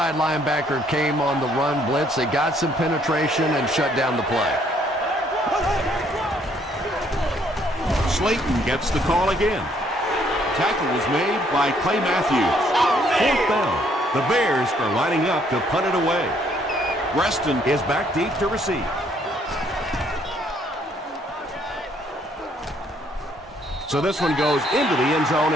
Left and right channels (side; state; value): both; normal; correlation 0.66